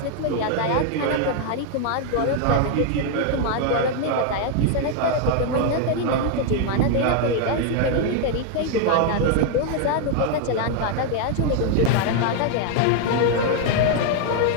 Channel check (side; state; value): both; different; correlation 0.00